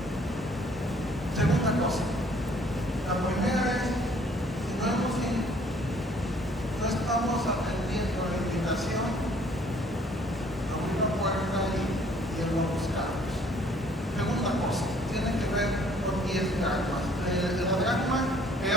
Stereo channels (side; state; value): both; normal; correlation 0.59